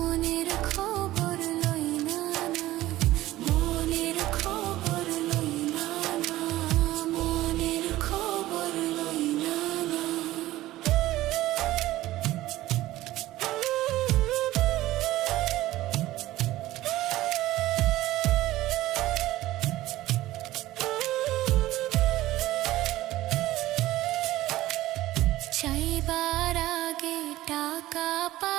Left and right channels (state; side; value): quieter; left; 16.1 dB